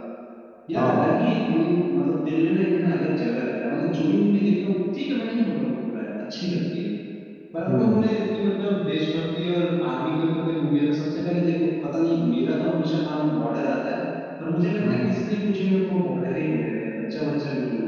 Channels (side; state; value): both; identical; correlation 1.00